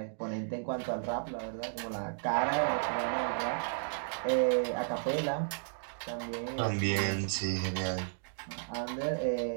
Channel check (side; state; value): left; silent; digital silence